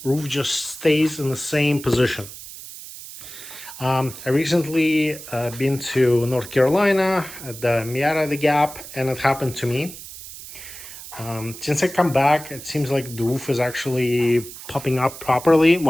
roof just stays in the same position. I recently been to North Carolina at the Miata the Gap, and it happened to me. Since I come back, it seems like the roof is actually popping up properly.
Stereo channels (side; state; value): right; noise; hiss, 14 dB below the sound